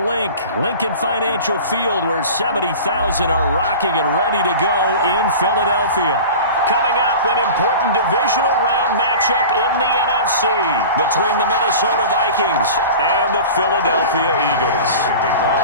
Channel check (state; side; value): inverted; both; correlation -0.36